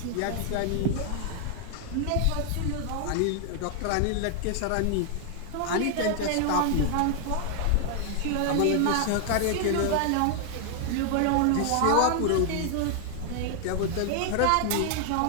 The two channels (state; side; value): different; both; correlation 0.00